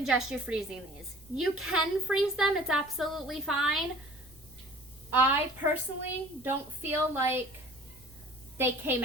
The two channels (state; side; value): noise; left; rumble, 23 dB below the sound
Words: you freezing these. You can freeze them, it's absolutely fine. I personally don't feel like they came